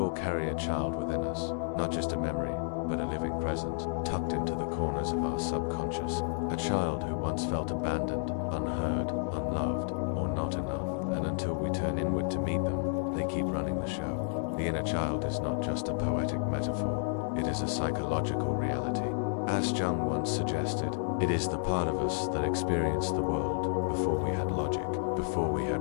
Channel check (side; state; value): right; silent; digital silence